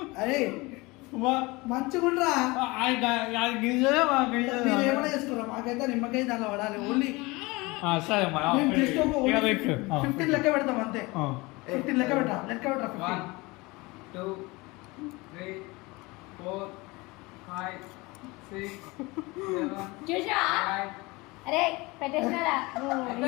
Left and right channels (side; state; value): right; quieter; 23.6 dB